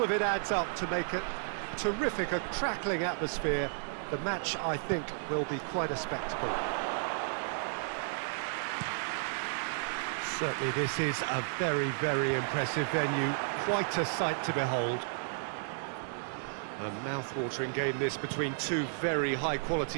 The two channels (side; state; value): left; silent; digital silence